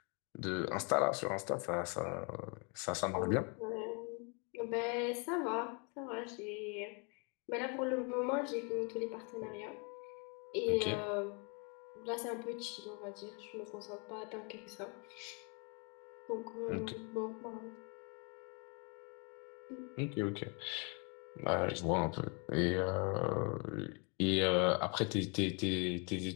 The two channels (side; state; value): right; quieter; 35.1 dB